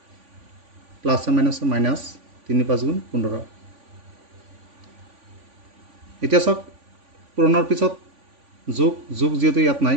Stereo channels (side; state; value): left; late; 3.5 ms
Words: প্লাছ মাইনাছ 3 5 গুণ 15 এতিয়া চাওক পূৰণৰ পিছত যোগ যোগ যিহেতু ইয়াত নাই